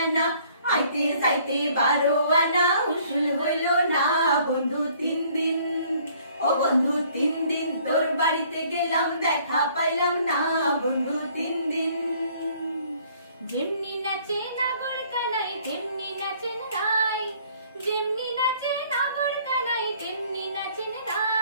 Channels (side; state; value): both; inverted; correlation -0.59